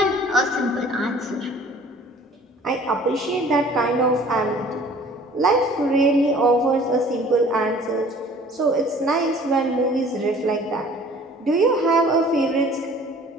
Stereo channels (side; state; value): both; normal; correlation 0.50